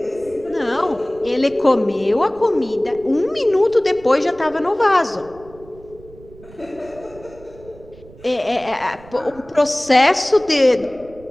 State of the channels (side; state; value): right; noise; rumble, 22 dB below the sound